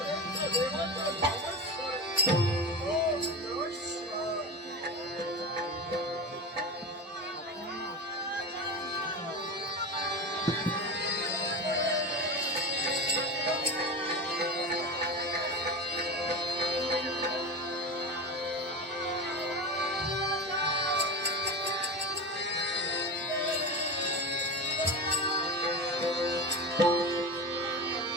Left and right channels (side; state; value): both; normal; correlation 0.25